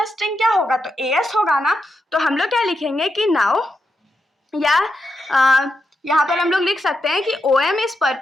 स्ट्रिंग क्या होगा? तो as होगा ना। तो हम लोग क्या लिखेंगे कि नाउ या यहाँ पर हम लोग लिख सकते हैं कि OM is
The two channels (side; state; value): both; normal; correlation 0.85